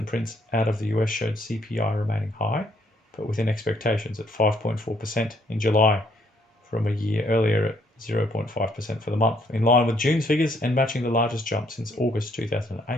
prints out of the US showed CPI remaining high, but within expectations at 5.4% in July, from a year earlier at 0.5% for the month, in line with June's figures and matching the largest jump since August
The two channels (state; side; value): normal; both; correlation 0.68